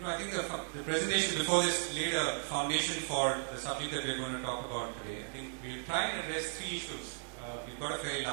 I think the presentation before this laid a foundation for the subject that we're going to talk about today. I think we'll try and address 3 issues. We've got a very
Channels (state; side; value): silent; left; 54 dB below the other